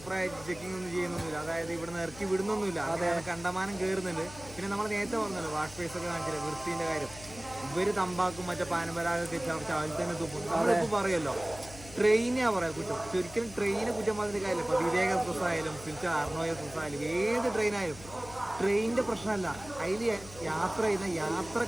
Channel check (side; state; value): left; noise; hum, 17 dB below the sound